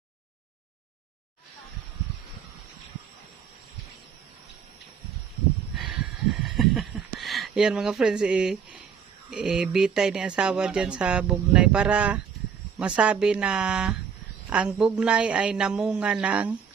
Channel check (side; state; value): left; quieter; 7.0 dB